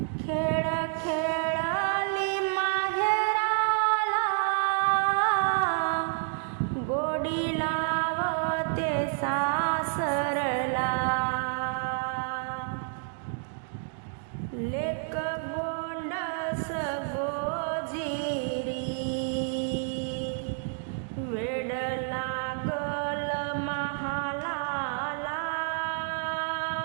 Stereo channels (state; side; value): silent; left; 57 dB below the other